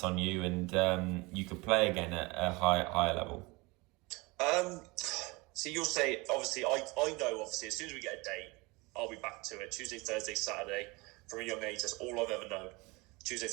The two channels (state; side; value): quieter; left; 25.0 dB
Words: on you, and you could play again at a higher level? So you'll say, obviously, I know, obviously, as soon as we get a date, I'll be back to it. Tuesday, Thursday, Saturday. From a young age, that's all I've ever known. Tuesday,